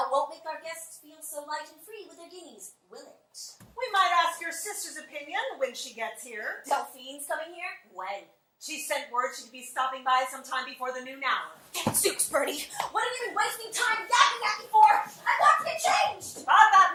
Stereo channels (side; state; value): both; identical; correlation 1.00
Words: won't make our guests feel so light and free with their guineas, will it? We might ask your sister's opinion when she gets here. Delphine's coming here? When? She sent word she'd be stopping by sometime before the noon hour. Gadzooks, Bernie! What have you been wasting time yapping at me for? I want to get changed! Thought that